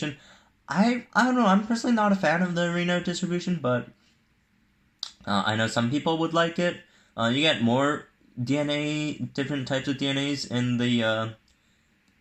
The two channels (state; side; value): identical; both; correlation 1.00